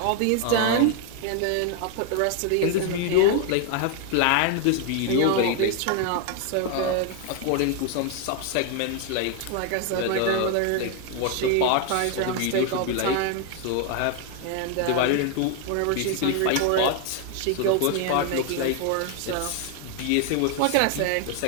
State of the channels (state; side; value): different; both; correlation 0.01